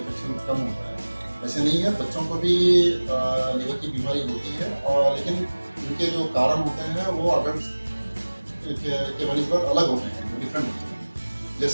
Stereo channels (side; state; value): both; inverted; correlation -1.00